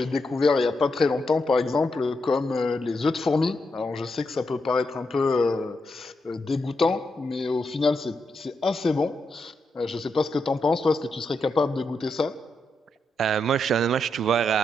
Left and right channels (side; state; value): both; normal; correlation 0.83